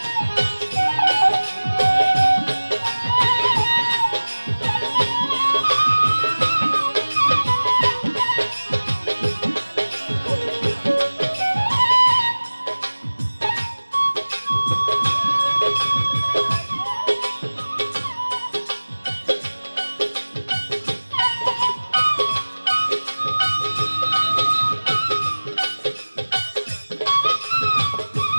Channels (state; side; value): inverted; both; correlation -1.00